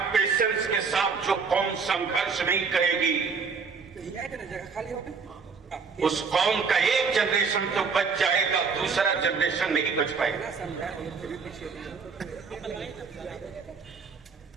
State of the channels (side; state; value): left; quieter; 5.3 dB